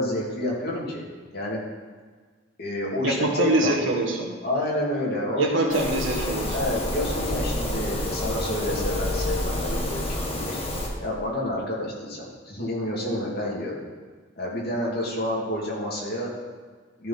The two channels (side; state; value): both; normal; correlation 0.23